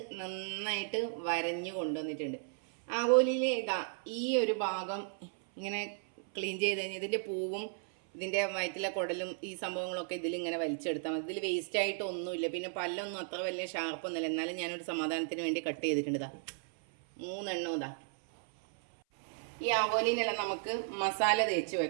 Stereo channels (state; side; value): silent; left; 55 dB below the other